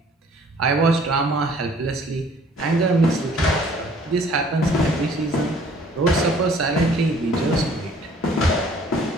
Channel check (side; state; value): both; normal; correlation 0.56